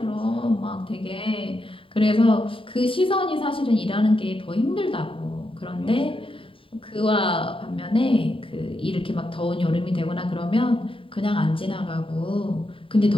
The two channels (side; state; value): right; late; 0.25 ms